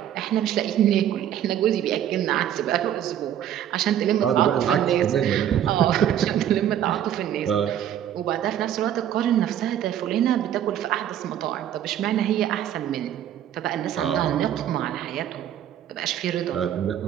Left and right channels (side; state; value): left; quieter; 10.6 dB